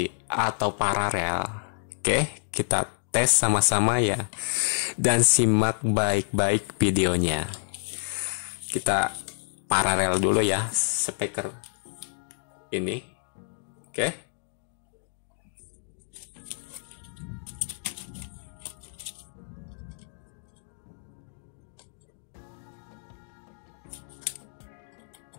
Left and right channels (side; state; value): right; silent; digital silence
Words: atau paralel? Oke, kita tes sama-sama ya. Dan simak baik-baik videonya. Kita paralel dulu ya speaker ini. Oke.